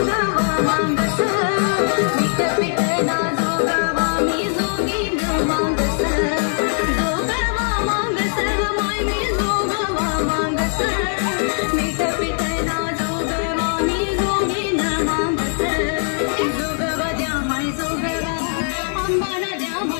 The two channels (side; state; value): right; silent; 65 dB below the other